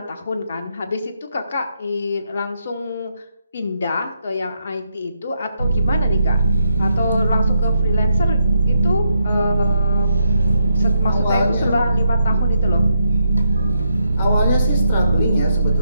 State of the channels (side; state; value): both; inverted; correlation -0.80